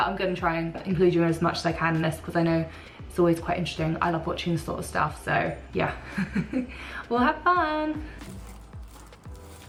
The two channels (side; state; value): both; identical; correlation 1.00